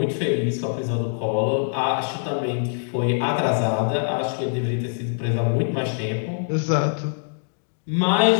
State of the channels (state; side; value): silent; right; digital silence